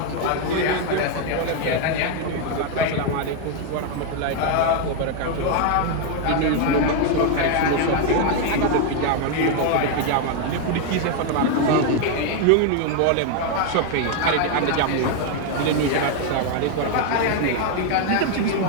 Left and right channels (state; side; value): different; both; correlation 0.01